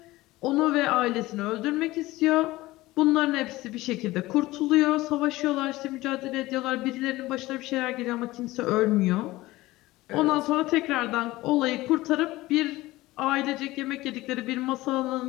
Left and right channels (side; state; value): right; quieter; 18.5 dB